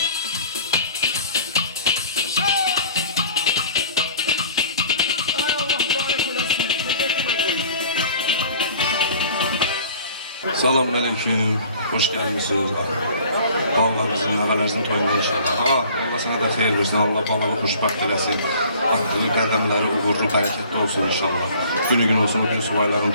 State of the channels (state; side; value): inverted; both; correlation -0.50